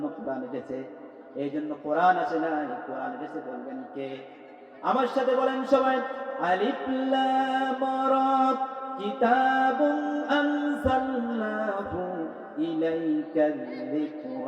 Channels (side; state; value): both; identical; correlation 1.00